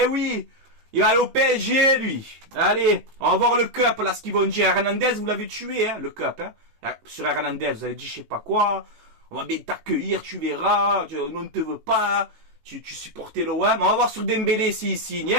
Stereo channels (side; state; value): left; late; 18 ms